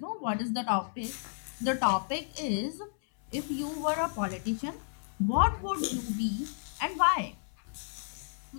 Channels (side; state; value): right; silent; 56 dB below the other